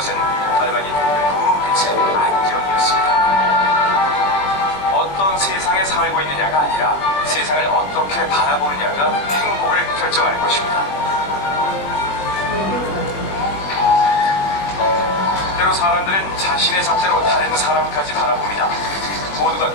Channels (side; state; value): right; late; 20 ms